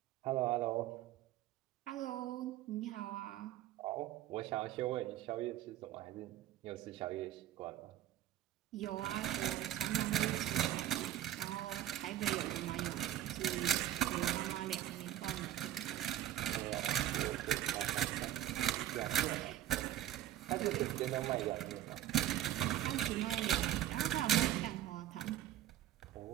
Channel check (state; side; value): quieter; left; 12.5 dB